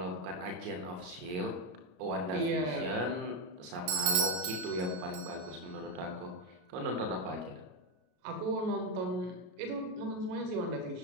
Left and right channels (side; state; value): left; late; 33 ms